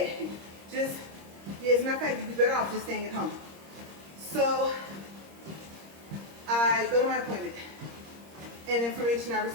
as a matter of fact, you'd be better off just staying at home. So I go to my appointment, and information I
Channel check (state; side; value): late; left; 26 ms